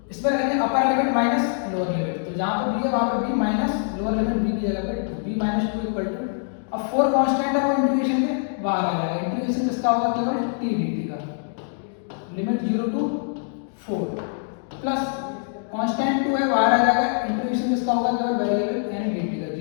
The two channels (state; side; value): silent; right; digital silence